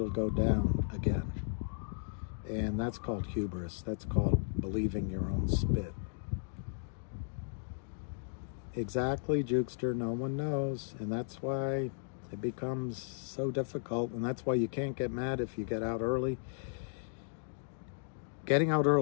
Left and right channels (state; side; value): silent; right; digital silence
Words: go down again. And that's called hubris. That's called believing your own spit. Exactly, Jukester. No one knows. And that's why it becomes so difficult. And that's why you can't get mad if you get out early. Getting out